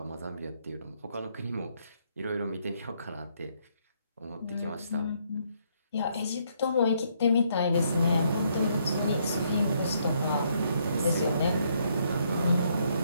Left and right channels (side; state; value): both; inverted; correlation -0.72